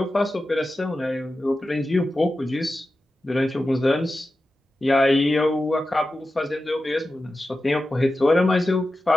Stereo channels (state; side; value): normal; both; correlation 0.93